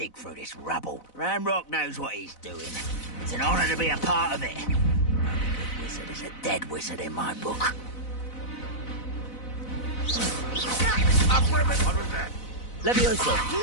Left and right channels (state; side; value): late; right; 4.0 ms